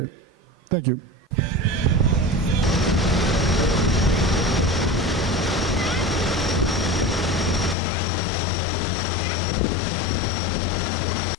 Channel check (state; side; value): drops out; right; at 7.8 s